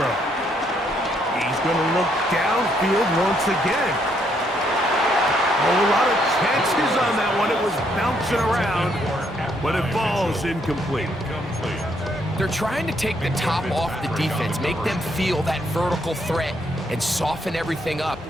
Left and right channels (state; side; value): normal; both; correlation 0.72